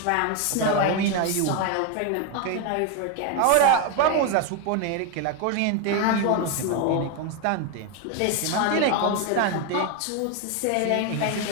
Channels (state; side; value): different; both; correlation 0.01